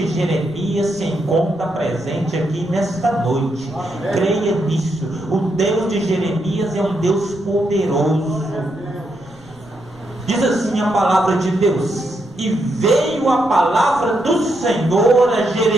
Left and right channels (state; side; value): noise; right; rumble, 28 dB below the sound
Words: Jeremias se encontra presente aqui nesta noite. Amém. Creia nisso. O Deus de Jeremias é um Deus poderoso. Diz assim a palavra de Deus: e veio a palavra do Senhor a